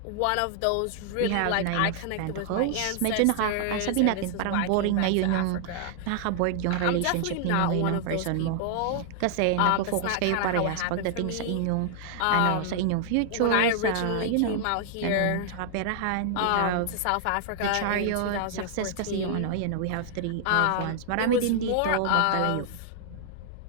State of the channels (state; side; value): different; both; correlation -0.01